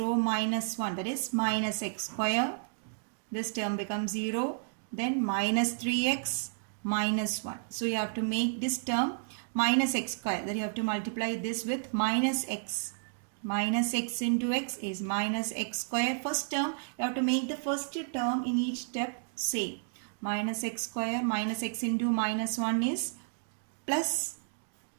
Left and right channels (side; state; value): left; silent; digital silence